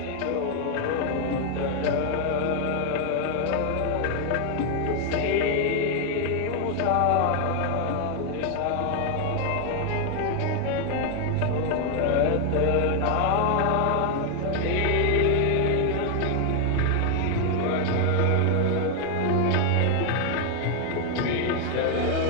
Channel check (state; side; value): different; both; correlation 0.00